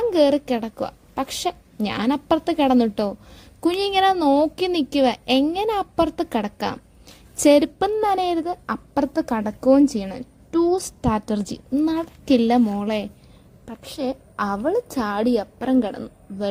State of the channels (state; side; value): identical; both; correlation 1.00